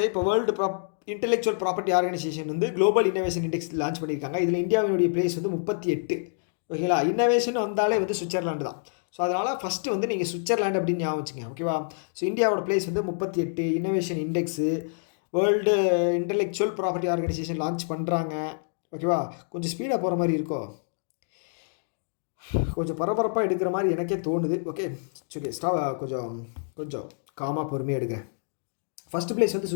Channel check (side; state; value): right; silent; digital silence